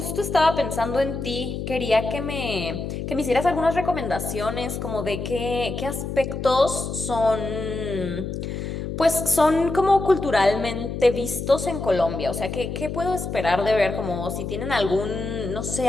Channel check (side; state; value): left; noise; hum, 5 dB below the sound